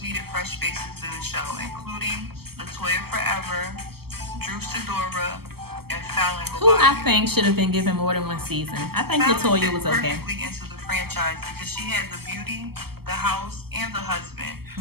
needed fresh faces to the show, including Latoya Forever, Drew Sidora, and Fallon Who I Gobadia. think should have been given more than one season. I think Fallon Latoya fit was okay. perfectly into the franchise because she had the beauty, the house, and the husband.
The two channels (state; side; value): late; left; 0.96 ms